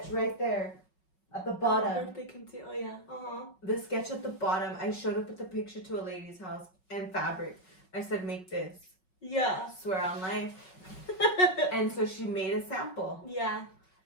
right there at the bottom. They can see. Oh, yeah. The sketch at the bottom. I showed up with the picture to a lady's house and fabric. I said, make this. Yeah. Swear on life. And so she made a sample. Yeah.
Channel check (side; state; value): right; late; 5.4 ms